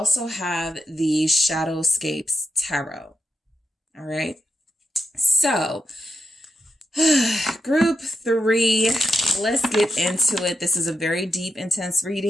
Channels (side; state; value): both; normal; correlation 0.84